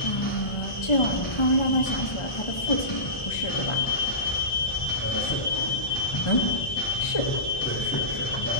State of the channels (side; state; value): right; late; 1.4 ms